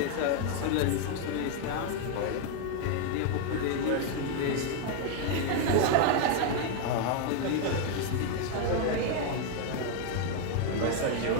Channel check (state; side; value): different; both; correlation 0.00